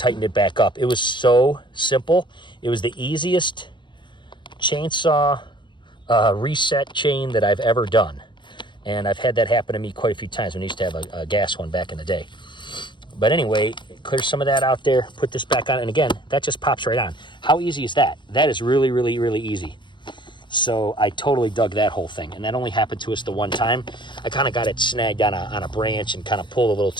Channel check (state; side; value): late; right; 0.23 ms